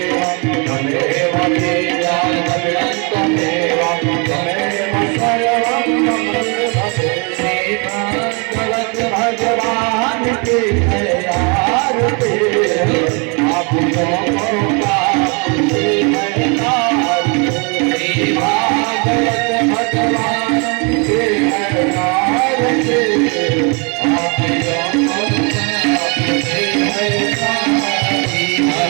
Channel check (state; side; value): quieter; left; 33.5 dB